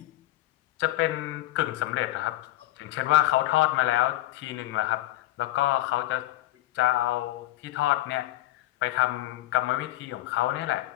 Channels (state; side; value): quieter; right; 16.3 dB